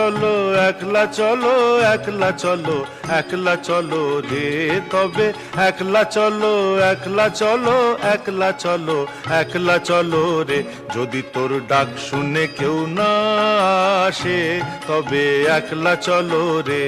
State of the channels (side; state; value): both; identical; correlation 1.00